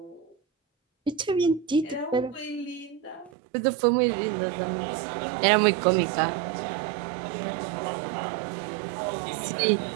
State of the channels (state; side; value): drops out; left; at 3.3 s